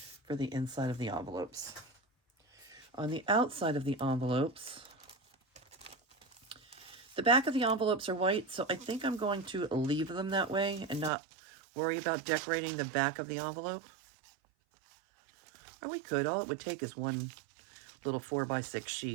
the inside of the envelopes. On the outside of the envelopes, the back of the envelopes are white, so I think I'm going to leave them that way and not worry about decorating the back of the envelope. Or we could. All it would take is one little 4x6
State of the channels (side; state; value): left; drops out; at 11.1 s